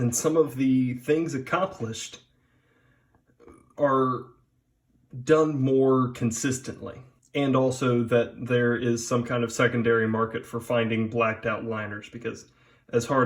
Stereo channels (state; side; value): identical; both; correlation 1.00